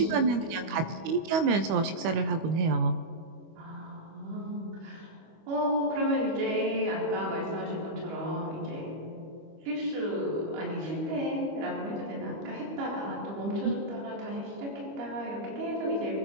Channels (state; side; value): late; left; 25 ms